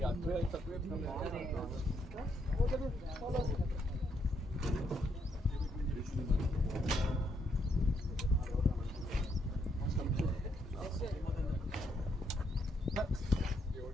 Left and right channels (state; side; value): normal; both; correlation 0.75